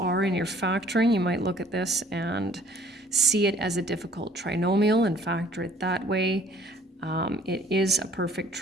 in your factoring, you might look at this and see it as a difficult trinomial and factor it that way. It is a perfect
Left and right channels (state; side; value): normal; both; correlation 0.56